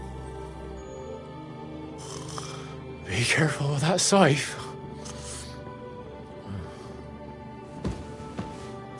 Be careful with that scythe.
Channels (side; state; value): both; identical; correlation 1.00